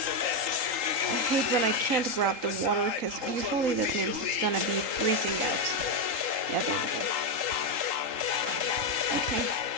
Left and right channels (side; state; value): left; late; 3.8 ms